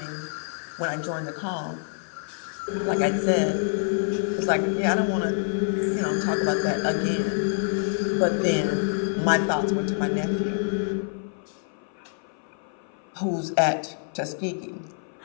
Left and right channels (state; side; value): silent; right; 57 dB below the other